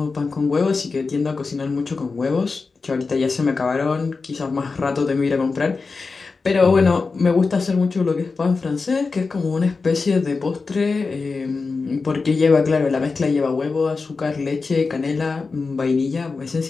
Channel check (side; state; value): right; quieter; 4.3 dB